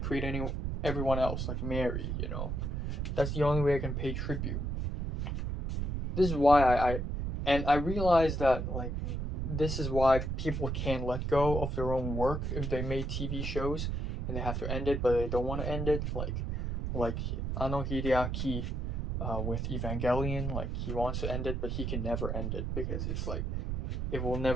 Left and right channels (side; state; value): right; noise; rumble, 2 dB below the sound